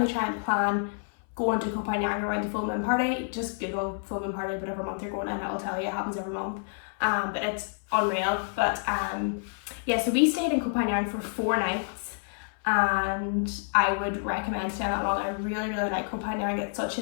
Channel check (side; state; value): right; silent; 59 dB below the other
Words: try and plan going to Koh Phangan around the full moon party. Just Google full moon party whatever month you're going and it'll tell you. It happens every month. But it's unreal. But yeah, so we stayed in Koh Phangan for 4 nights. And I would recommend staying that long. I really like Koh Phangan. It's such